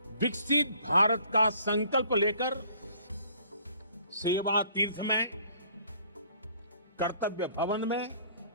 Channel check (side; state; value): both; inverted; correlation -0.57